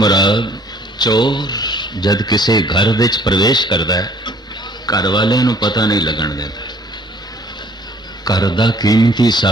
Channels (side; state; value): both; normal; correlation 0.56